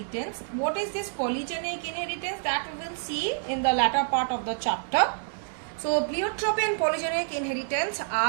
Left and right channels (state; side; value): silent; left; digital silence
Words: What is this polygenic inheritance? That we will see in the latter part of the chapter. So pleiotropy and polygenic inheritance